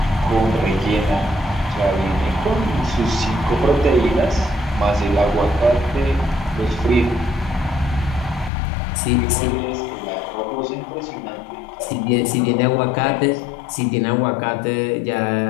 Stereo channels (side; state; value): right; drops out; at 8.5 s